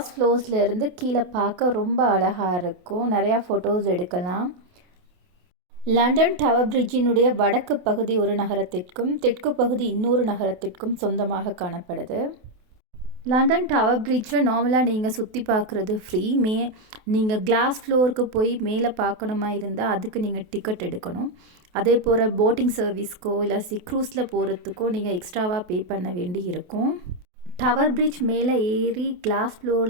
ஃப்ளோர்ஸ்லேருந்து கீழே பார்க்க ரொம்ப அழகாக இருக்கும். நிறையா ஃபோட்டோஸ் எடுக்கலாம். லண்டன் டவர் பிரிட்ஜினுடைய வடக்கு பகுதி ஒரு நகரத்திற்கும் தெற்கு பகுதி இன்னொரு நகரத்திற்கும் சொந்தமாக காணப்படுது. லண்டன் டவர் பிரிட்ஜை நார்மலாக நீங்கள் சுற்றி பார்க்குறது ஃப்ரீ. நீங்கள் கிளாஸ் ஃப்ளோருக்கு போய் மேலே பார்க்கணுமா இருந்தால் அதுக்கு நீங்கள் டிக்கெட் எடுக்கணும். அதே போல் போட்டிங் சர்வீஸ்க்கோ இல்லை க்ரூஸில் போகிறதுக்கோ நீங்கள் எக்ஸ்ட்ராவாக பே பண்ண வேண்டி இருக்கும். டவர் பிரிட்ஜ் மேலே ஏறி கிளாஸ்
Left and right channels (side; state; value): left; late; 28 ms